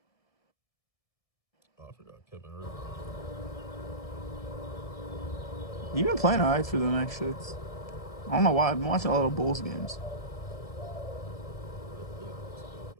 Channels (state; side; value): late; right; 1.7 ms